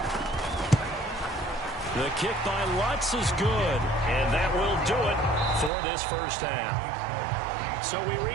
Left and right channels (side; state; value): left; drops out; at 5.7 s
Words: The kick by Lutz is good, and that will do it for this first half. So we